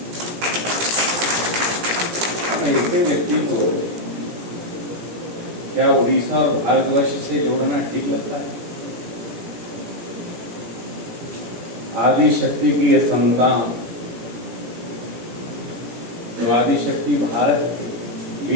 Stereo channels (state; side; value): late; left; 17 ms